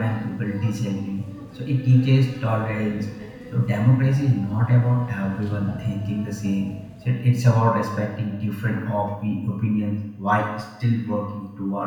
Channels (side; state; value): both; identical; correlation 1.00